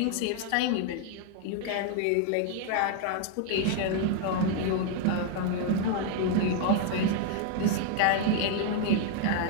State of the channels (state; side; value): different; both; correlation 0.00